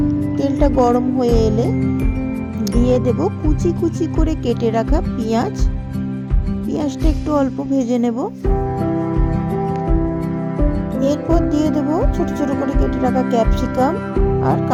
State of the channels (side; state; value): both; identical; correlation 1.00